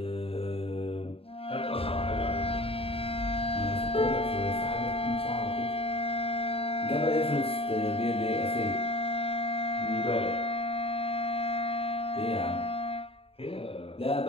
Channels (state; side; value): late; right; 0.28 ms